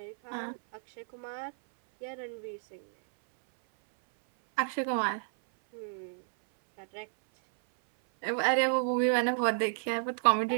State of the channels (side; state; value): left; silent; 57 dB below the other